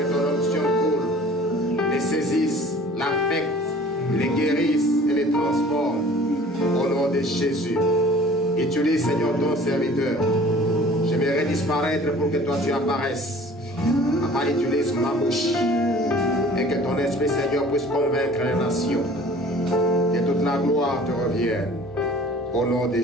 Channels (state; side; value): normal; both; correlation 0.48